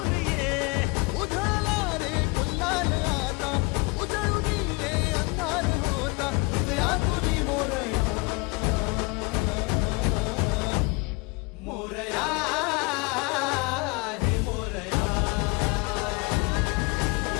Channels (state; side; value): quieter; right; 27.1 dB